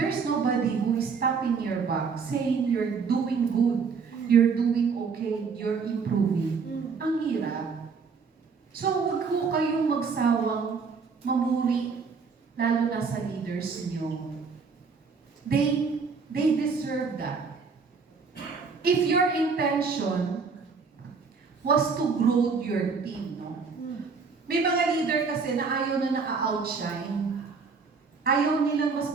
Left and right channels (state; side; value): quieter; left; 5.2 dB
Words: nobody who is tapping your back, saying you're doing good, you're doing okay, you're improving, ang hirap. So huwag ko kayong magsawang mamuri, lalo na sa leaders niyo. They deserve that. If your intention was to grow your team, no? May mga leader kasi na ayaw na na-outshine. Ayaw nilang mas